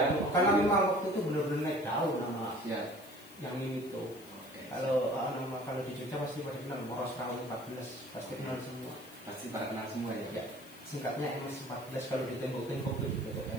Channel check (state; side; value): noise; left; hiss, 21 dB below the sound